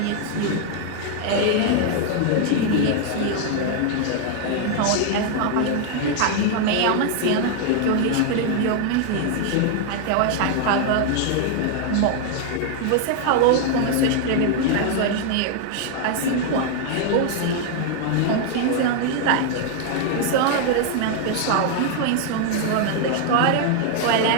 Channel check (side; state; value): both; different; correlation 0.00